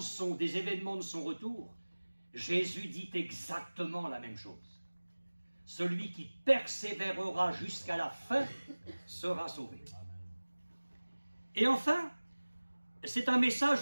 des événements de son retour, Jésus dit exactement la même chose. Celui qui persévérera jusqu'à la fin sera sauvé. Et enfin, c'est un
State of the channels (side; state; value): both; inverted; correlation -1.00